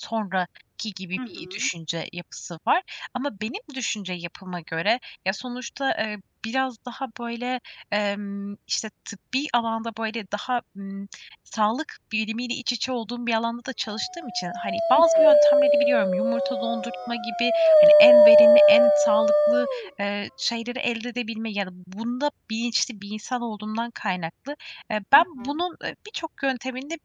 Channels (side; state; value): both; identical; correlation 1.00